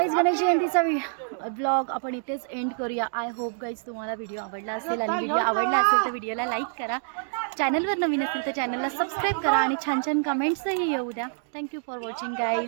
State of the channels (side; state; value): left; silent; digital silence